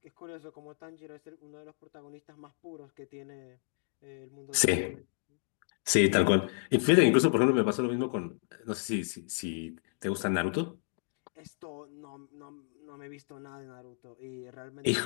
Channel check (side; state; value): right; silent; 56 dB below the other